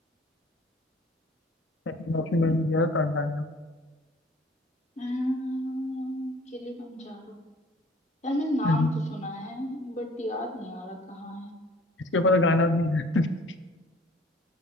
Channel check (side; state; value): both; normal; correlation 0.52